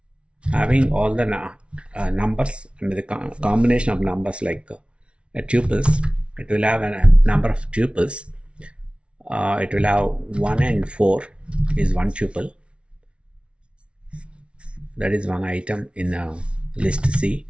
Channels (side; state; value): left; late; 0.059 ms